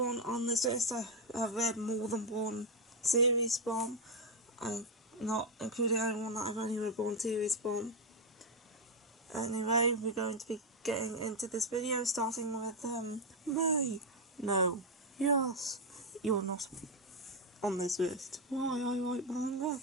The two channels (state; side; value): normal; both; correlation 0.05